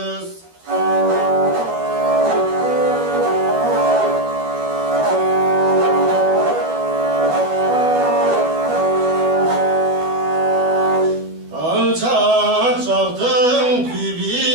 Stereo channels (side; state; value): left; late; 12 ms